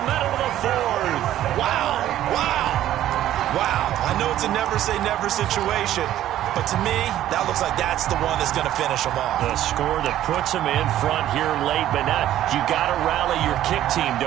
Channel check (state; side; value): quieter; left; 12.7 dB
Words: minute of the 4th. Wow, wow, wow. I know it's a never-say-never situation, but to me, that looks like that's the one that's going to finish them off. The score that puts them in front here late, but now you got to rally your kick team,